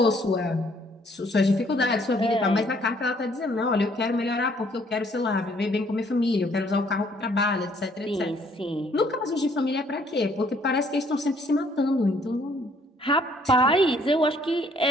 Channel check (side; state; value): both; normal; correlation 0.63